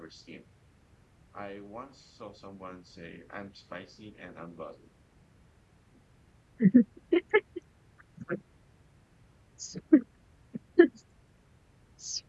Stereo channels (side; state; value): both; identical; correlation 1.00